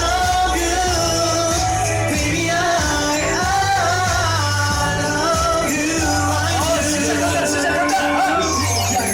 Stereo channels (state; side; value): identical; both; correlation 1.00